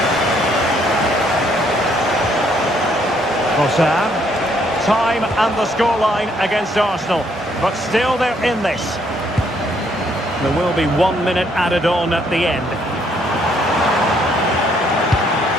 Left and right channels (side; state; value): both; normal; correlation 0.69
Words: Trossard. Time and the scoreline against Arsenal, but still they're in this. There will be 1 minute added on at the end.